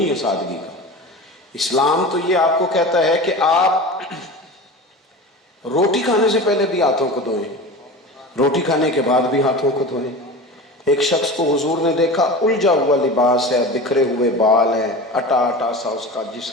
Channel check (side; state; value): both; normal; correlation 0.32